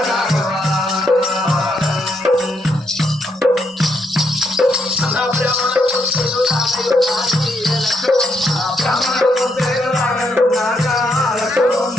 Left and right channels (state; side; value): normal; both; correlation 0.77